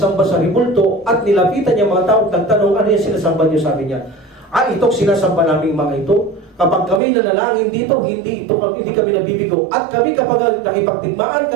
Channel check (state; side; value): drops out; left; at 7.0 s